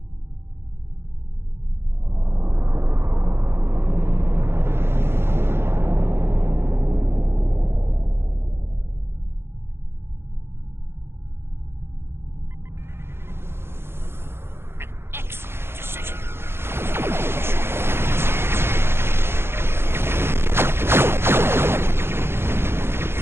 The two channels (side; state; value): left; late; 0.11 ms